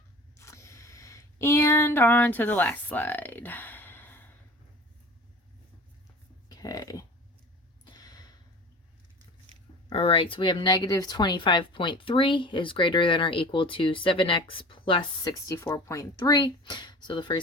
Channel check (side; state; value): both; normal; correlation 0.40